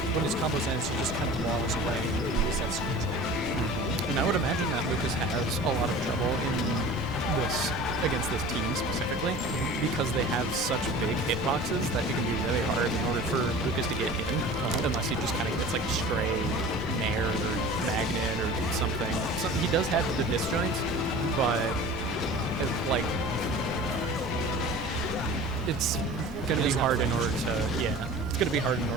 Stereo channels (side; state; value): both; normal; correlation 0.40